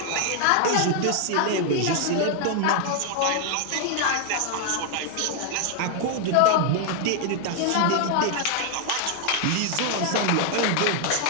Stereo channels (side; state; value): both; different; correlation 0.00